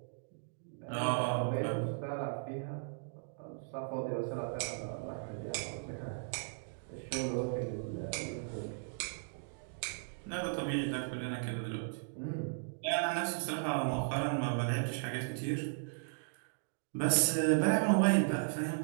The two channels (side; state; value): left; silent; digital silence